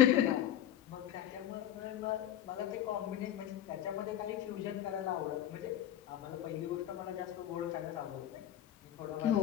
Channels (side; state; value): right; quieter; 11.6 dB